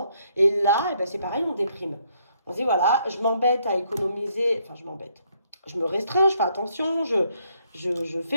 Et là, c'est pareil, on déprime. On se dit, voilà, je m'embête à économiser. Enfin, je m'embête. Je me restreins, je fais attention, je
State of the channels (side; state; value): both; inverted; correlation -0.71